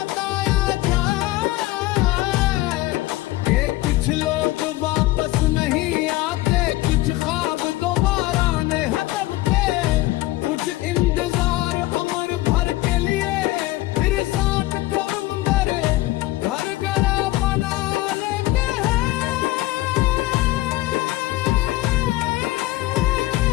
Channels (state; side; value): quieter; right; 18.1 dB